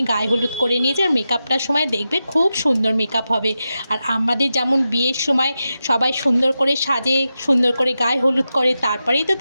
গায়ে হলুদ করে নিয়েছি। আর মেকআপটার সময় দেখবে খুব সুন্দর মেকআপ হবে। আর আমাদের যেমন বিয়ের সময় সবাই সুন্দর করে সাজে, সুন্দর করে গায়ে হলুদ করে, তারপরেই তো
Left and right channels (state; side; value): inverted; both; correlation -0.91